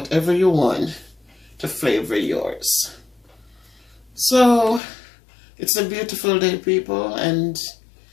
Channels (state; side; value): drops out; right; at 4.8 s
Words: you want to flavor yours. So it's a beautiful day, people, and